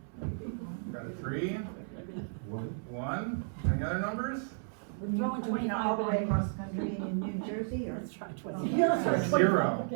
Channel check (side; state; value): left; silent; 56 dB below the other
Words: Got a 3? 1? Any other numbers? All the way across the country in New Jersey, or? Yes. 0.